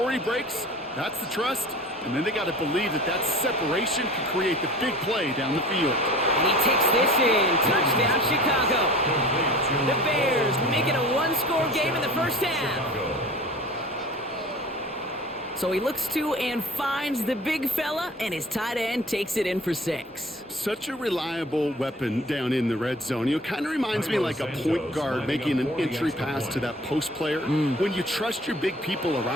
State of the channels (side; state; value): both; normal; correlation 0.42